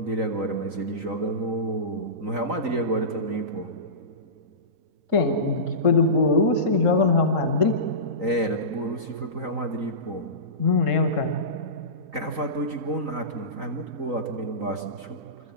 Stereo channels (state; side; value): late; left; 3.9 ms